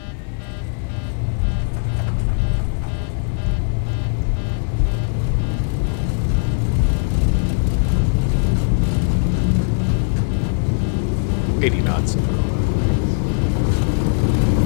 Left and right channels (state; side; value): silent; right; 61 dB below the other